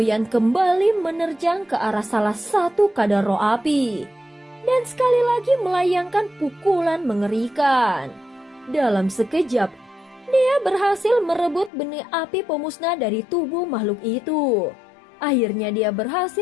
kembali menerjang ke arah salah satu kadar roh api dan sekali lagi melayangkan pukulan mengerikan. Dalam sekejap, dia berhasil merebut benih api pemusnah dari tubuh makhluk itu. Akhirnya dia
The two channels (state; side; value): drops out; right; at 11.7 s